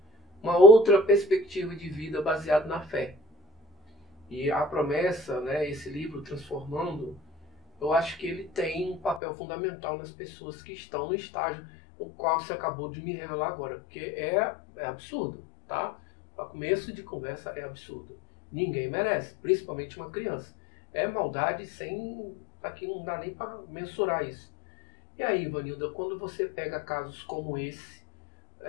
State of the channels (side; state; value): right; drops out; at 9.2 s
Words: uma outra perspectiva de vida baseada na fé. E a promessa, né, esse livro Transformando, eu acho que ele tem um papel fundamental nas pessoas que estão no estágio o qual você acabou de me revelar agora, porque é absurdo, tá? Para começo de conversa é absurdo. Ninguém merece, principalmente uma criança. É maldade sem... Aqui não dá nem para mensurar isso. E aí, Ivanilda, quando você pega casos como esse,